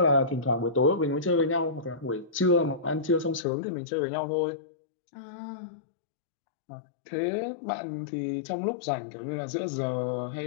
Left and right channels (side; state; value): right; drops out; at 3.5 s